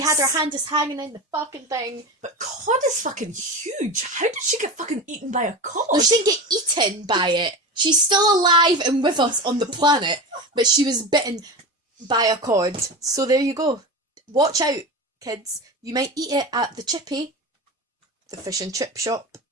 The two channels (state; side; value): normal; both; correlation 0.25